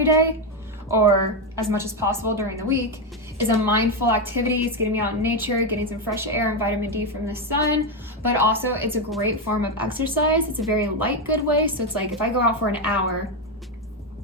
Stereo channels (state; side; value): normal; both; correlation 0.08